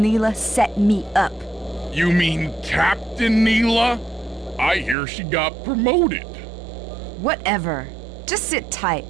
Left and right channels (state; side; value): drops out; left; at 5.0 s